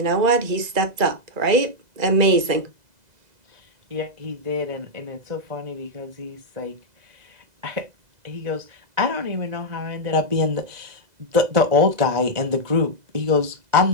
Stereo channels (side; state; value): left; late; 2.0 ms